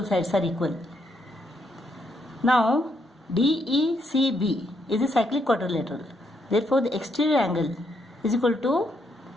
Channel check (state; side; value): normal; both; correlation 0.75